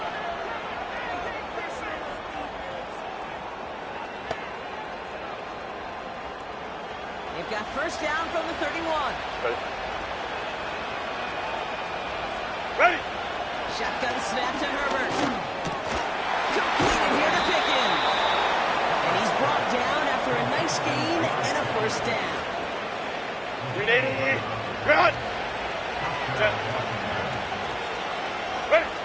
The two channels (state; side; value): identical; both; correlation 1.00